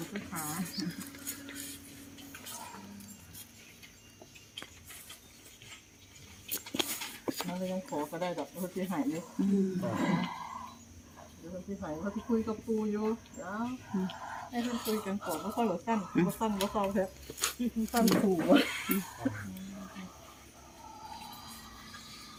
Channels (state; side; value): identical; both; correlation 1.00